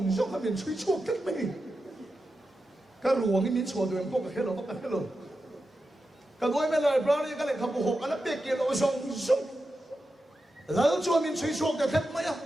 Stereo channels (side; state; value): both; normal; correlation 0.90